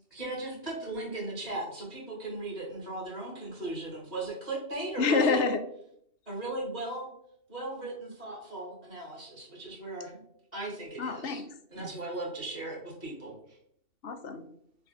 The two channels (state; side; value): late; right; 2.7 ms